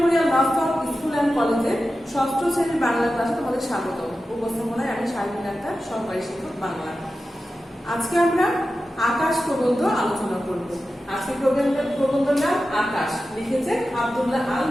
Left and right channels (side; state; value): both; normal; correlation 0.93